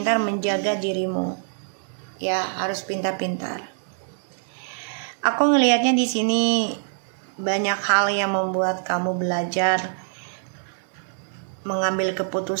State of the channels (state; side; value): silent; left; digital silence